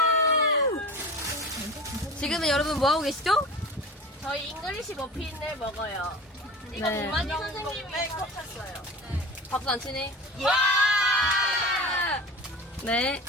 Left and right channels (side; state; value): both; normal; correlation 0.35